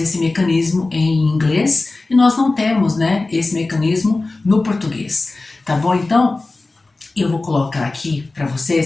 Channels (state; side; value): quieter; right; 3.3 dB